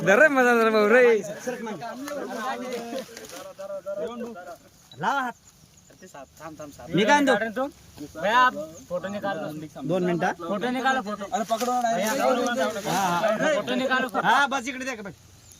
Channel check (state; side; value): identical; both; correlation 1.00